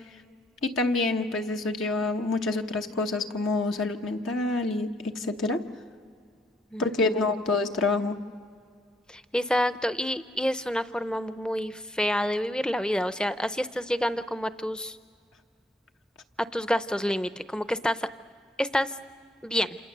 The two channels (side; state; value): both; normal; correlation 0.68